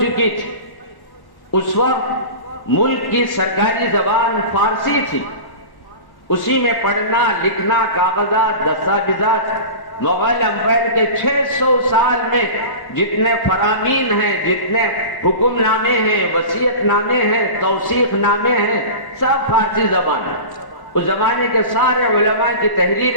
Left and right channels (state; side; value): late; right; 1.1 ms